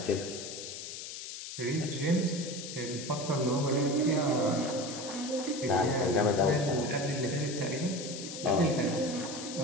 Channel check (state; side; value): noise; left; hiss, 9 dB below the sound